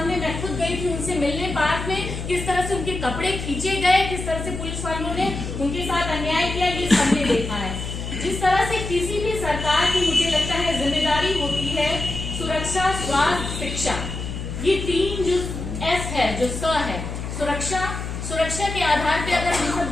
मैं खुद गई थी उनसे मिलने पार्क में, किस तरह से उनके कपड़े खींचे गए, किस तरह से पुलिस वालों ने उनके साथ अन्याय किया, ये सबने देखा है। जिस तरह से किसी भी सरकार की मुझे लगता है जिम्मेदारी होती है सुरक्षा, स्वास्थ्य, शिक्षा, ये तीन जो एस है, जो स है, सुरक्षा, सुरक्षा के आधार पे अगर हम सब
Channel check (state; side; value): noise; left; hum, 6 dB below the sound